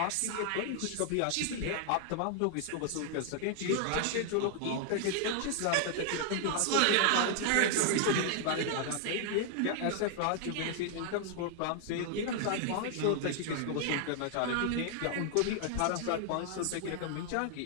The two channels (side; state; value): both; different; correlation 0.00